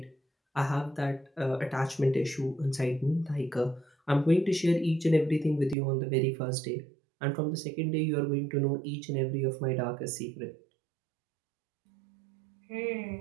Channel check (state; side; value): drops out; left; at 5.8 s